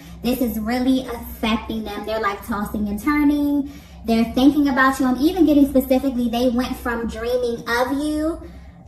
this is really affecting them. They're like tossing and turning. They're thinking about you. I'm even getting specifically, they went from dreaming of you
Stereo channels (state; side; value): identical; both; correlation 1.00